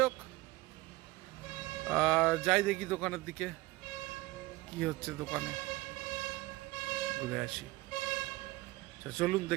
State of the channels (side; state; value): left; quieter; 20.0 dB